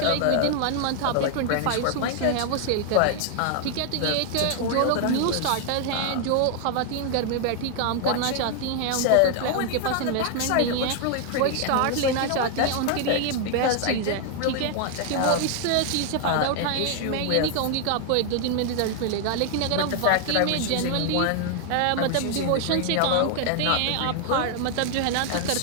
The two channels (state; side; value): different; both; correlation 0.00